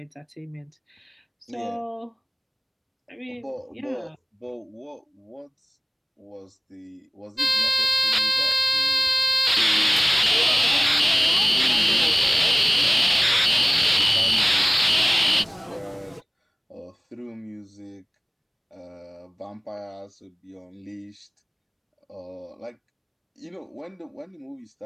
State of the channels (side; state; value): both; identical; correlation 1.00